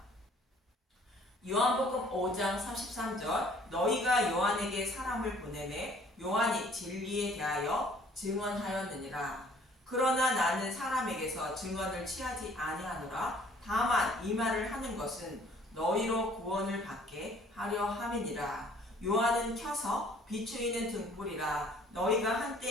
요한복음 5장 33절 너희가 요한에게 사람을 보내매 요한이 진리에 대하여 증언하였느니라. 그러나 나는 사람에게서 증언을 취하지 아니하노라. 다만 이 말을 하는 것은 너희로 구원을 받게 하려 함이니라. 요한은 켜서 비추이는 등불이라. 너희가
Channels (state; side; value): normal; both; correlation 0.57